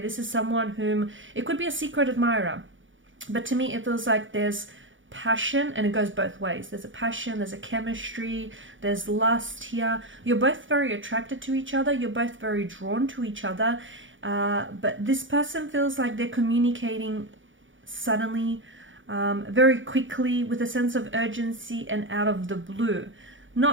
is someone whom, it could be a secret admirer, but to me it feels like there's passion, and it goes both ways. There's a passion, there's a chemistry, there's lust here. You're both very attracted to each other, you're both very drawn to each other, but this person feels like they're communicating suddenly, very quickly, with a sense of urgency and out of the blue.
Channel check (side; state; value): left; late; 0.56 ms